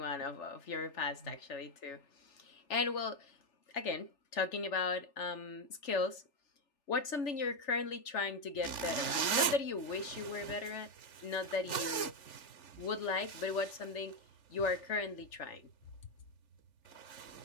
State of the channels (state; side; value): late; right; 3.4 ms